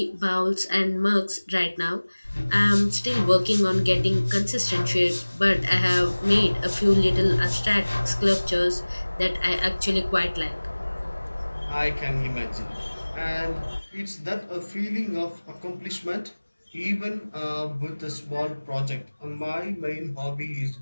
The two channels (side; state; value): both; inverted; correlation -1.00